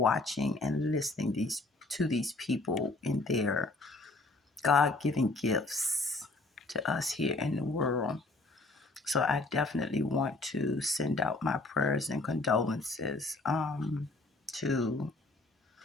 and listening to these people in their God-given gifts to us here in the world. So I definitely want to send out my prayers and condolences to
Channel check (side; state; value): right; quieter; 3.1 dB